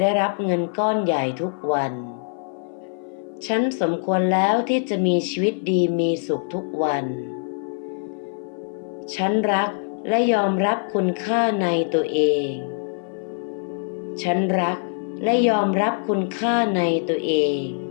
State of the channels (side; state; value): right; silent; 57 dB below the other